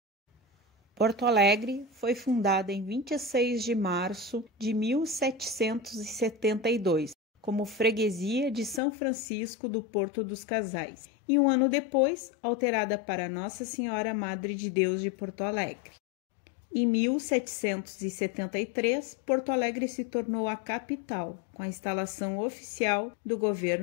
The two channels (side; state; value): right; drops out; at 8.8 s